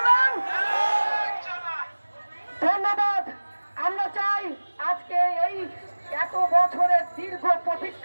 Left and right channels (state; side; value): inverted; both; correlation -1.00